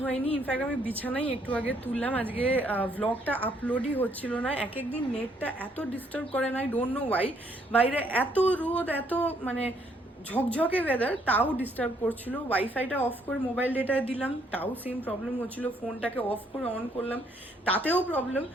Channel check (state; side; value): normal; both; correlation 0.69